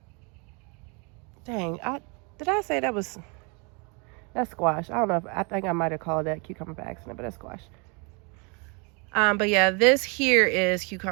Dang, did I say that's squash? I don't know. I think I might have called that cucumber by accident, but that's squash. But yeah, this here is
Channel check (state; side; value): quieter; left; 32.6 dB